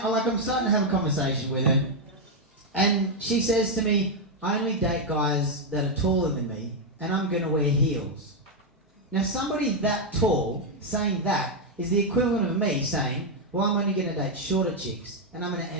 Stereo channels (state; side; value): normal; both; correlation 0.01